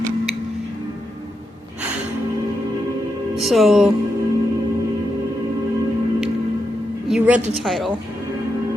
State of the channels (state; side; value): normal; both; correlation 0.85